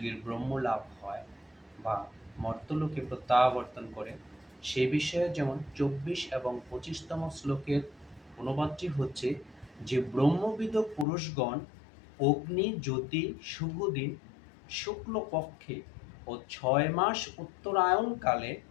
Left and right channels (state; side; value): drops out; right; at 11.1 s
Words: ব্রহ্মলাভ হয় বা মর্ত্যলোকে প্রত্যাবর্তন করে, সে বিষয়ে যেমন ২৪ এবং ২৫তম শ্লোকের অনুবাদটি হচ্ছে যে ব্রহ্মবিদ পুরুষগণ অগ্নি জ্যোতি শুভ দিন শুক্লপক্ষে ও ৬ মাস উত্তরায়ণকালে